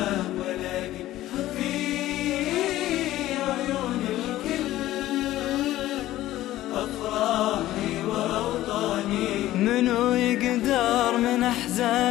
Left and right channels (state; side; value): quieter; right; 15.0 dB